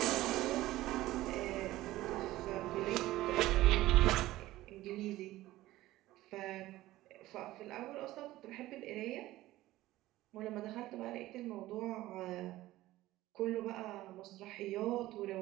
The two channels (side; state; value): left; quieter; 16.5 dB